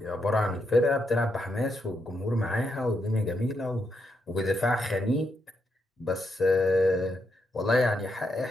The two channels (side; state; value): both; normal; correlation 0.81